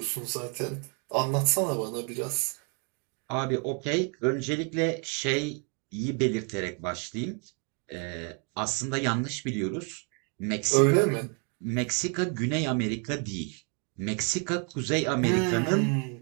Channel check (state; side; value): quieter; left; 37.6 dB